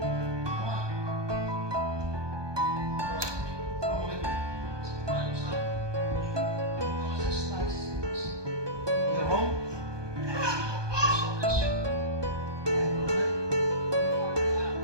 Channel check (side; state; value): left; late; 1.2 ms